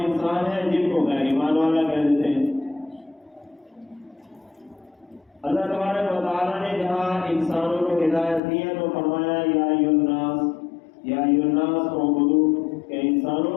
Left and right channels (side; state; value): right; drops out; at 8.4 s